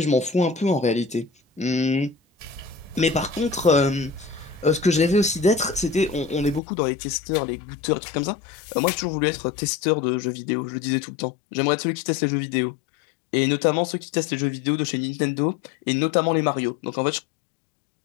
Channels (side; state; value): right; drops out; at 6.6 s